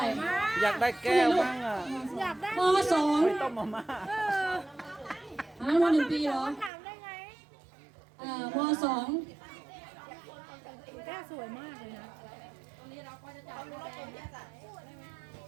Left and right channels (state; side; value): drops out; left; at 6.7 s